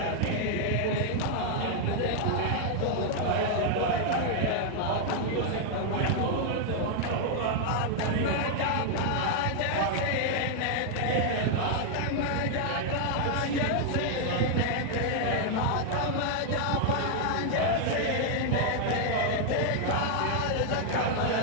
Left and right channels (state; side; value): different; both; correlation 0.00